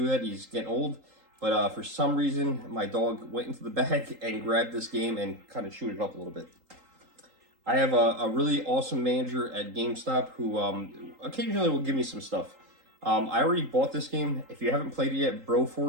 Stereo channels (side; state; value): left; late; 3.8 ms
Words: that. He's getting old. But for some reason, my dog went into the bag and grabbed this game and kind of chewed it up a little bit. I have a really awesome manager at GameStop who occasionally will give me some stuff. I already bought this game. If you haven't played it yet,